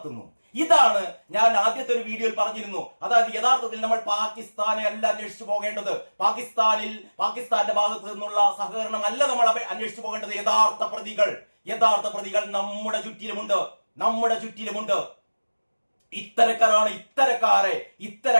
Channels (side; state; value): both; inverted; correlation -1.00